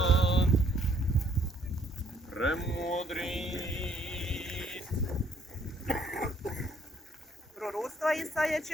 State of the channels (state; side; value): normal; both; correlation 0.66